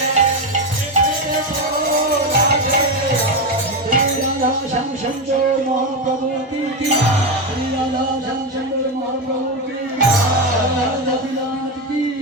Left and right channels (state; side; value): normal; both; correlation 0.12